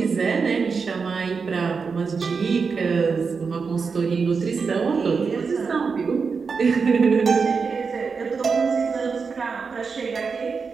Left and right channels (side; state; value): left; quieter; 5.2 dB